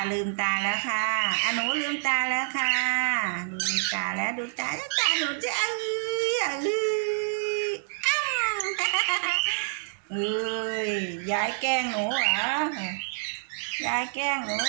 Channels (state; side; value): silent; left; 60 dB below the other